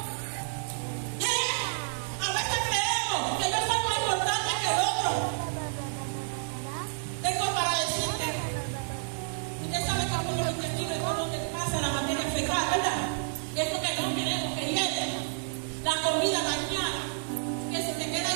A veces creemos que yo soy más importante que el otro. Tengo para decirte, usted sabe que por los intestinos es por donde pasa la materia fecal, ¿verdad? Es lo que no queremos que llegue. La comida dañada, que si te queda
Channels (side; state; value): left; silent; 58 dB below the other